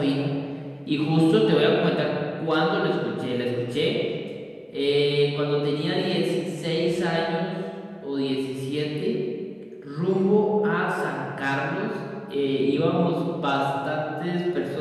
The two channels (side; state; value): both; identical; correlation 1.00